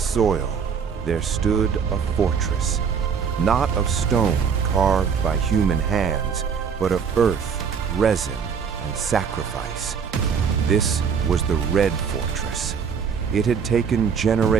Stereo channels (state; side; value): quieter; left; 6.5 dB